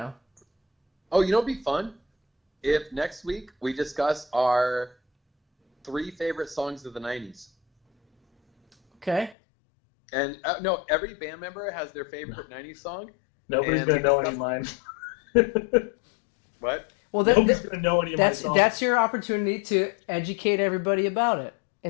Oh, you know what'd be fun? If next week we discuss our 3 favorite songs of the 90s. Okay. And no, every band member has their favorite 90s song. Nobody's And going to know we any of mine. What? Well, Nobody's going to know any of my songs. that's your opportunity to educate everybody about it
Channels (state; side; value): drops out; right; at 9.3 s